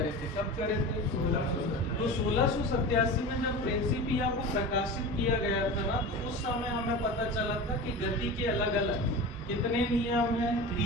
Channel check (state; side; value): normal; both; correlation 0.30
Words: थे। कब करे थे? 1687। तो 1687 में जब प्रिंसिपिया को प्रकाशित किया गया था ना, तो उस समय हमें पता चला था कि गति के अलग अलग कितने नियम हैं?